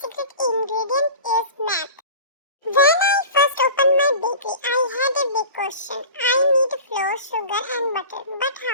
secret ingredient is math. When I first opened my bakery, I had a big question. I need flour, sugar and butter, but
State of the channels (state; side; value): inverted; both; correlation -0.37